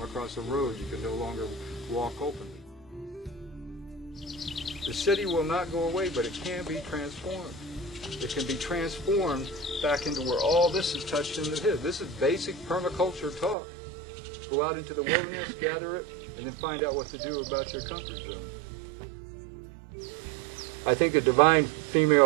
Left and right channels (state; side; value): drops out; left; at 13.6 s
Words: across a road you can no longer walk openly. The city will not go away, but it can be transformed. It can be transformed back into where all this is touched into his. This is basic permaculture talk. Go out into the wilderness, gather it, and then find out what to do about your comfort zone. I think the divine